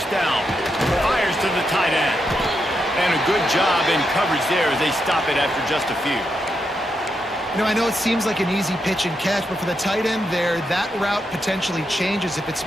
down. Fires to the tight end. And a good job in coverage there as they stop it after just a few. You know, I know it seems like an easy pitch and catch, but for the tight end there, that route potentially changes if it's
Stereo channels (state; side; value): normal; both; correlation 0.83